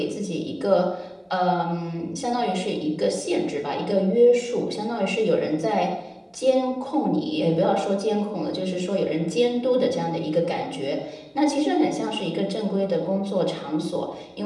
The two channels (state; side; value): identical; both; correlation 1.00